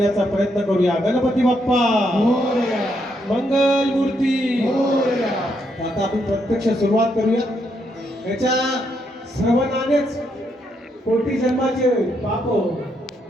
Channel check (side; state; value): both; normal; correlation 0.77